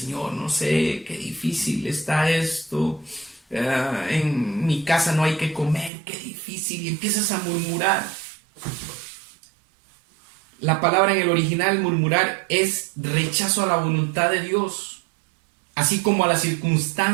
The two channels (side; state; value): left; drops out; at 5.9 s